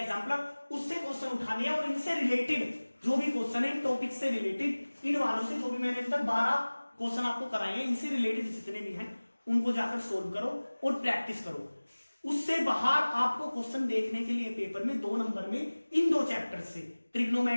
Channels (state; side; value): inverted; both; correlation -1.00